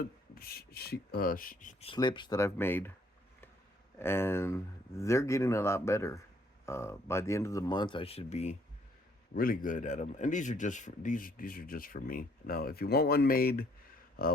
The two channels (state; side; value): normal; both; correlation 0.65